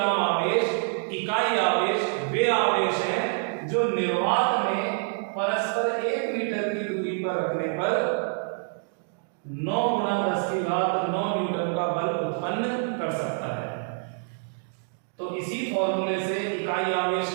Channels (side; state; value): left; silent; 58 dB below the other